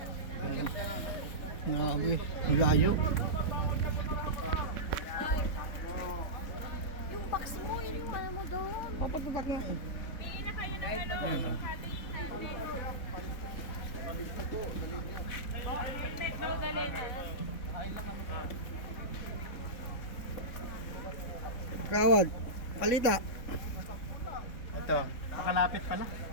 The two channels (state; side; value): late; right; 3.6 ms